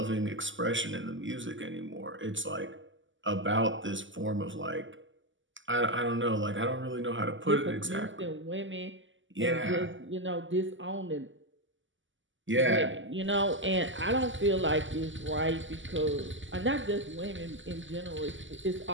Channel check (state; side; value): late; left; 0.55 ms